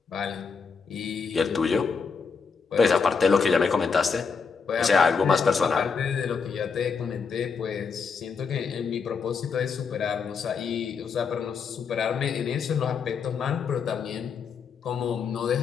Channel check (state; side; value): quieter; right; 5.6 dB